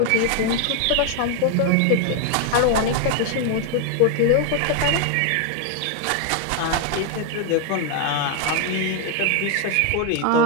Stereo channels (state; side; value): different; both; correlation 0.01